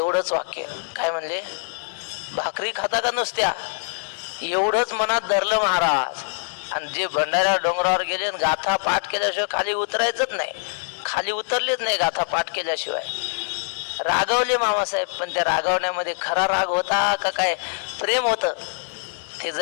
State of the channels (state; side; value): silent; right; digital silence